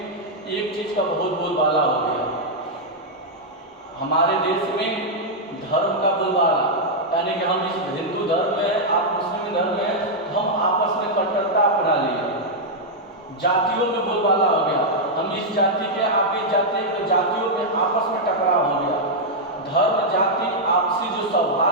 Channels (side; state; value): both; normal; correlation -0.04